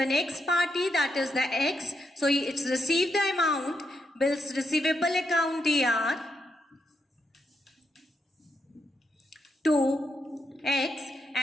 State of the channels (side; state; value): both; normal; correlation 0.81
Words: next party, that is the X. So it's received the amount, bills receivable account DR to X